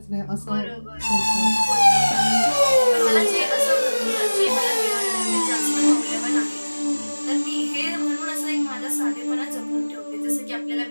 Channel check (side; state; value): both; inverted; correlation -1.00